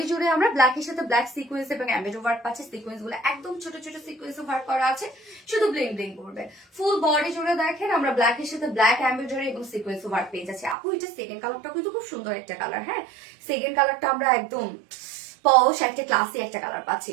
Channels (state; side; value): drops out; left; at 10.8 s